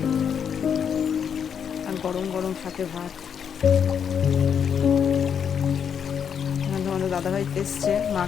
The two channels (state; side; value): quieter; right; 7.6 dB